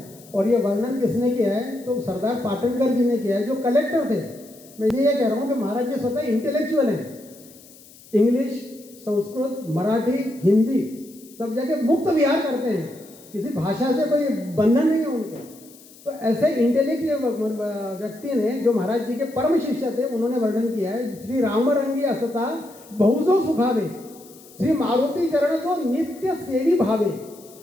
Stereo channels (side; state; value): left; noise; hiss, 23 dB below the sound